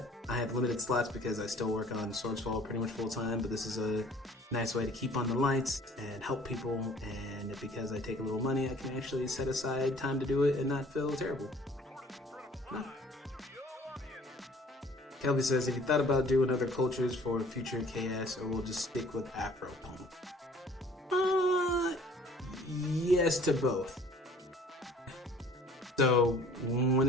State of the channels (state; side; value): normal; both; correlation 0.53